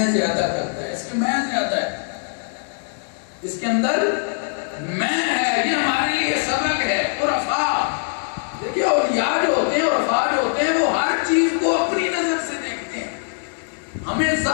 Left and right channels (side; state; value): right; silent; digital silence